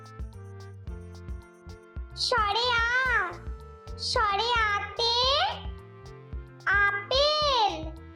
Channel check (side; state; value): both; identical; correlation 1.00